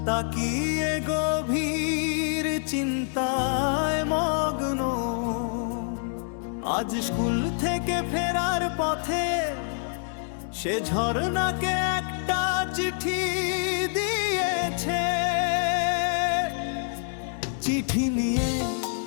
তাকিয়ে গভীর চিন্তায় মগ্ন। আজ স্কুল থেকে ফেরার পথে সে ঝর্ণাকে একটা চিঠি দিয়েছে। চিঠি নিয়ে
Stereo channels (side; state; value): right; silent; digital silence